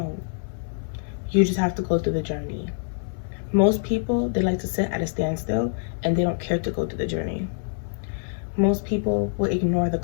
You just have to go through the journey. Most people, they like to sit at a standstill and they don't care to go through the journey. Most people will ignore the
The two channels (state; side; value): silent; right; 55 dB below the other